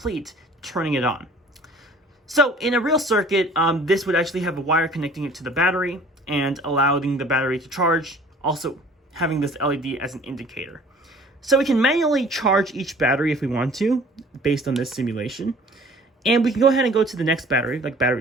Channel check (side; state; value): both; normal; correlation 0.50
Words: turning it on. So in a real circuit, this would actually have a wire connecting it to the battery and allowing the battery to charge, also having this LED as an indicator. So we can manually charge each battery if we want to, based on this simulation. And we can go ahead and go to the next battery, like